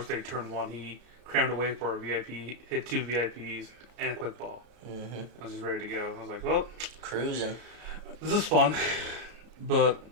day turn 1. He crammed away for a VIP, hit 2 VIPs, and a quick ball. Mm-hmm. I was just ready to go. I was like, well, cruising. This is fun, but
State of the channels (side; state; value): left; late; 33 ms